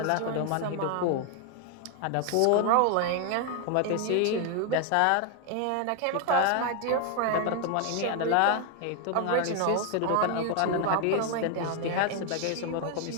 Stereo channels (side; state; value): both; different; correlation 0.01